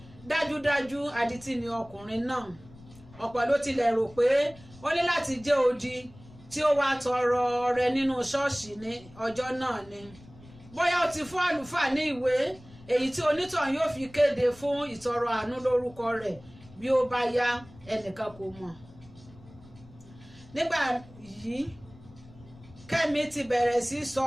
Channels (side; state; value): left; noise; rumble, 22 dB below the sound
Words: dájúdájú adití ni ọkùnrin náà. Ọ̀pọ̀ ló tilẹ̀ rò pé ó ní láti jẹ́ odi tí ó wá tọrọ ọrẹ nínú ṣọ́ọ̀ṣì ní ọjọ́ náà ni. Bóyá ó ti fún àlùfáà ní ìwé èyí tí onítọ̀hún yóò fi kéde fún ìtọrọ àánú lórúkọ rẹ̀ bí ó bá yá, ẹnìkan kò mọ̀. Nígbà yìí Kẹ́mi ti bẹ̀rẹ̀ sí sọ